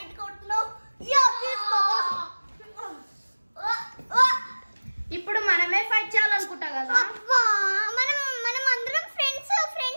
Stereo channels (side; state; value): both; inverted; correlation -1.00